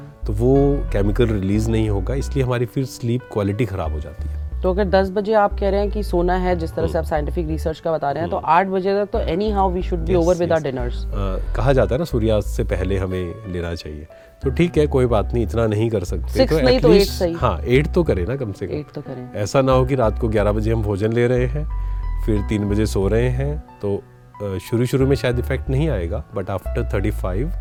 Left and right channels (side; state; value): both; identical; correlation 1.00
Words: तो वो केमिकल रिलीज नहीं होगा, इसलिए हमारी फिर स्लीप क्वालिटी ख़राब हो जाती है। तो अगर 10 बजे आप कह रहे हैं कि सोना है, जिस तरह से आप साइंटिफिक रिसर्च का बता रहे हैं, तो 8 बजे तक तो anyhow we should be over with our dinners. कहा जाता है ना सूर्यास्त से पहले हमें लेना चाहिए, तो ठीक है, कोई बात नहीं, इतना नहीं कर सकते 6 तो नहीं तो 8 सही। हाँ 8 तो करें ना, कम से कम 8 तो करें। ऐसा ना हो कि रात को 11 बजे हम भोजन ले रहे हैं फिर 3 बजे सो रहे हैं, तो शुरू में शायद इफेक्ट नहीं आएगा, बट आफ्टर